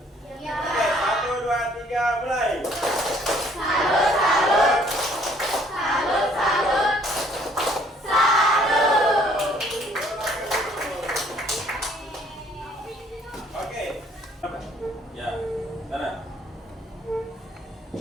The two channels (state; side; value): normal; both; correlation 0.61